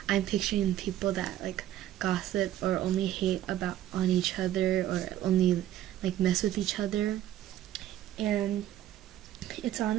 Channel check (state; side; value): quieter; left; 12.6 dB